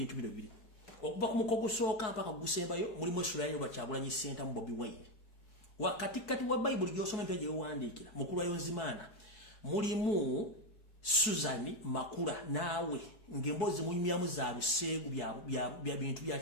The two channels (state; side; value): late; right; 4.7 ms